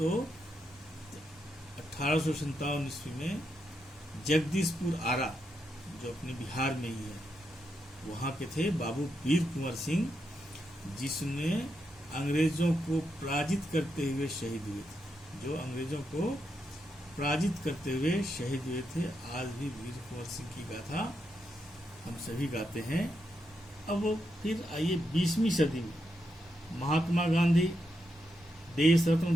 1857 ईस्वी में जगदीशपुर आरा, जो अपने बिहार में ही है, वहाँ के थे बाबू वीर कुंवर सिंह, जिसने अंग्रेजों को पराजित करते हुए शहीद हुए थे। जो अंग्रेजों को पराजित करते हुए शहीद हुए थे। आज भी वीर कुंवर सिंह की गाथा हम सभी गाते हैं। अब फिर आइए 20वीं सदी में महात्मा गांधी, देश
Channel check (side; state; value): both; normal; correlation 0.83